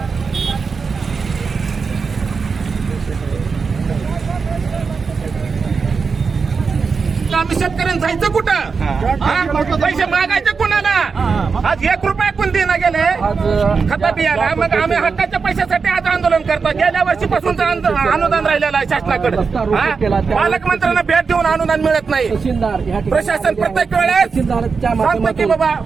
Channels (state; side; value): quieter; left; 5.1 dB